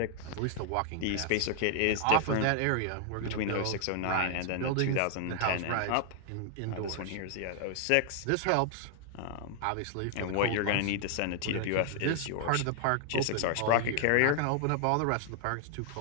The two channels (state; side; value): different; both; correlation 0.00